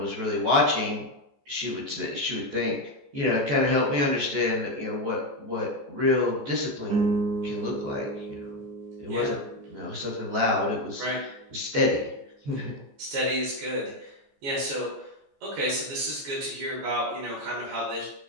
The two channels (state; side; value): late; left; 14 ms